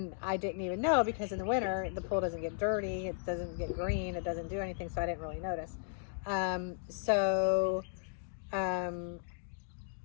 I didn't even know, because in the winter the pool doesn't get dirty, it doesn't get green, it doesn't do anything, so I didn't really notice.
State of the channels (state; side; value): silent; right; digital silence